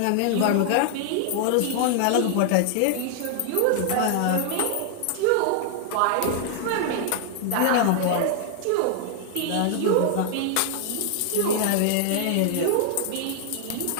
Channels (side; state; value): both; different; correlation 0.00